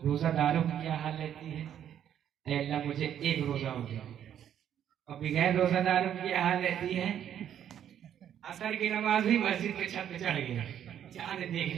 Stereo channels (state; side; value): quieter; left; 9.8 dB